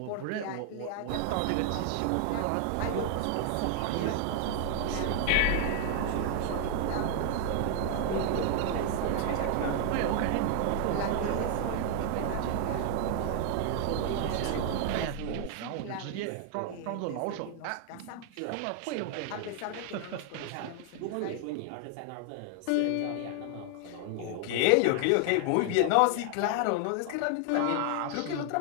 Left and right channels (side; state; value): both; different; correlation 0.00